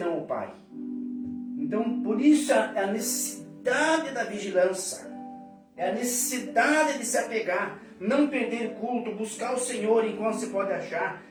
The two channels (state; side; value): identical; both; correlation 1.00